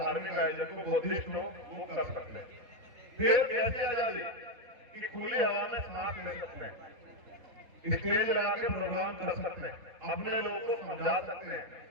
आयोजन को, बुद्धिस्ट हो, वो कर सकते हैं। फिर कैसे आजादी कि खुली हवा में सांस ले सकते हैं, स्टेज लगा के प्रोग्राम कर सकते हैं, अपने लोगों को समझा सकते हैं,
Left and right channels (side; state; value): left; late; 3.7 ms